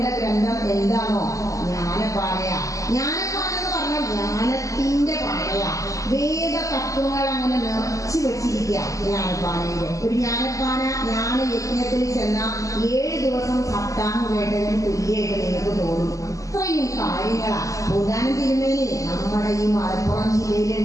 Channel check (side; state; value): right; late; 0.16 ms